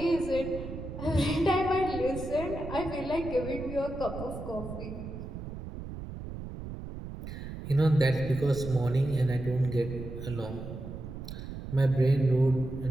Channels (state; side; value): noise; right; rumble, 9 dB below the sound